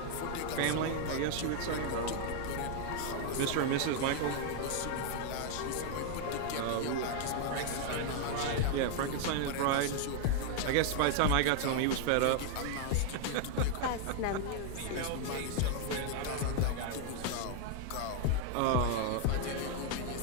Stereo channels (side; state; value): both; different; correlation 0.00